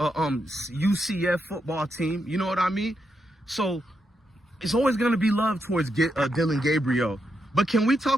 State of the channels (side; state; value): both; normal; correlation 0.83